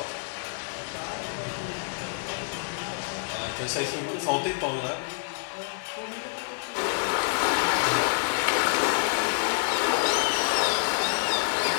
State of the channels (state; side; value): silent; right; digital silence